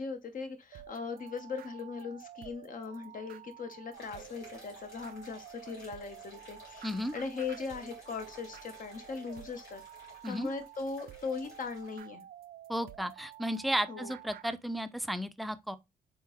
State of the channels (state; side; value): normal; both; correlation 0.71